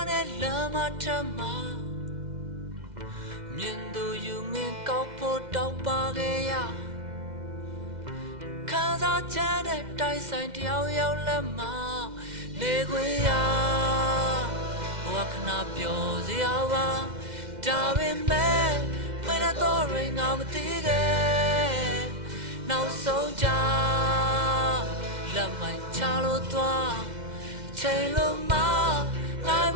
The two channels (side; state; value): left; late; 2.1 ms